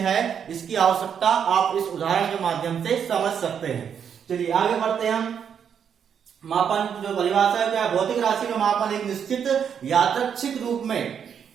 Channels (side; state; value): left; quieter; 7.8 dB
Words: इसकी आवश्यकता आप इस उदाहरण के माध्यम से समझ सकते हैं। चलिए आगे बढ़ते हैं हम। मापन जो परिभाषा है क्या, भौतिक राशि का मापन एक निश्चित यादृच्छिक